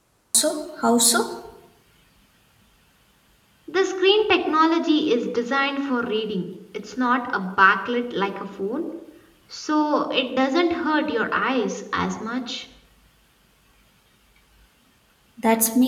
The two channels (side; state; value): both; identical; correlation 1.00